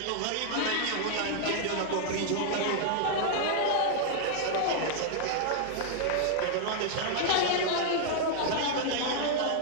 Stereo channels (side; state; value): both; different; correlation -0.01